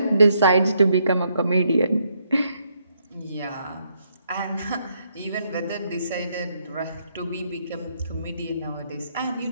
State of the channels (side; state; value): both; inverted; correlation -0.75